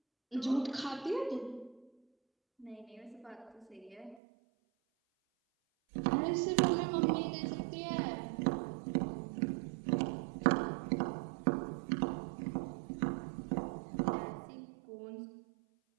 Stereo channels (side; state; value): left; drops out; at 4.2 s